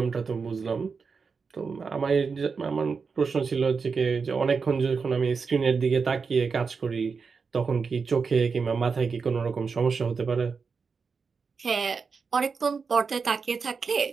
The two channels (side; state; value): left; quieter; 5.2 dB